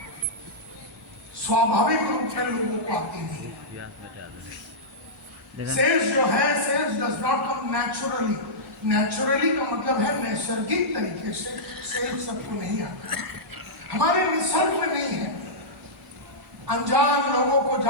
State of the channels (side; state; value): both; normal; correlation -0.12